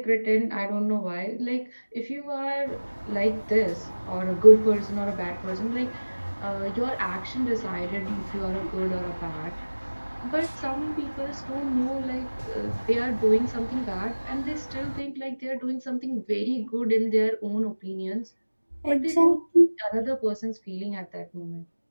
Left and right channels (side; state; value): both; inverted; correlation -1.00